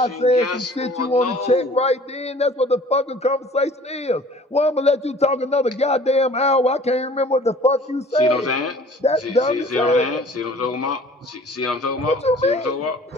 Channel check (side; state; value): both; normal; correlation 0.49